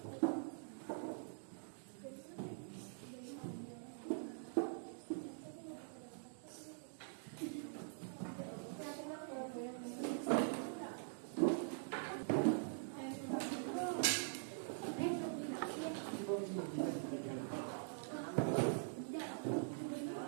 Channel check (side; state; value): left; silent; digital silence